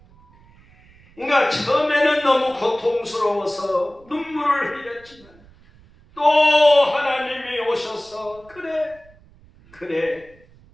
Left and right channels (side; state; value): right; noise; rumble, 27 dB below the sound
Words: 그러니까 처음에는 너무 고통스러워서 눈물을 흘렸지만 또 하나님이 오셔서 그래